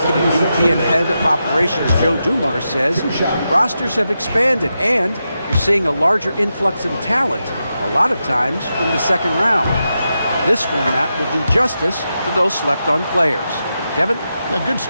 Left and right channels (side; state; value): both; inverted; correlation -0.88